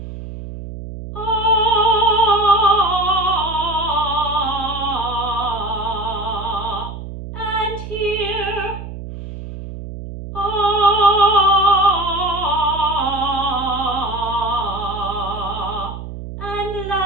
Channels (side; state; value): right; noise; hum, 10 dB below the sound